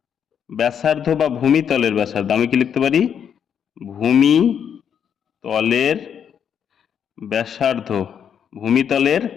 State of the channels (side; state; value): right; quieter; 8.1 dB